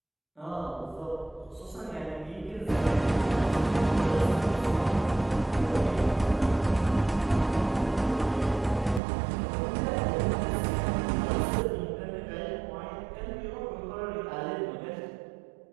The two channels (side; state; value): left; drops out; at 9.0 s